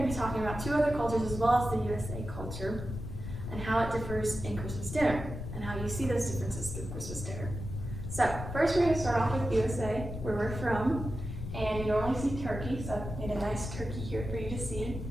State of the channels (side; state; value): left; noise; rumble, 7 dB below the sound